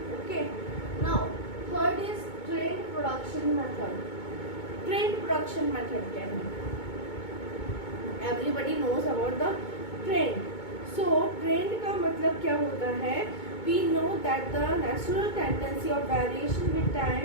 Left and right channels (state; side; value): late; right; 2.2 ms